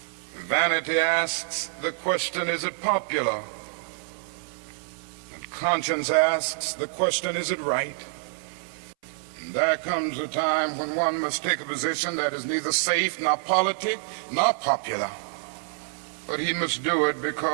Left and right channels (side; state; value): left; silent; 60 dB below the other